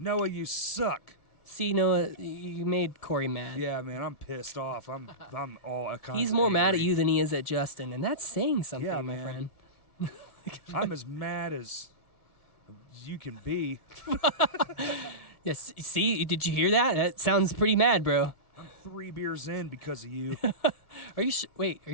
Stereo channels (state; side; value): late; right; 1.7 ms